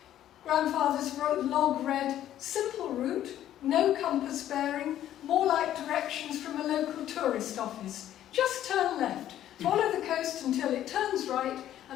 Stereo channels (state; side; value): quieter; right; 11.9 dB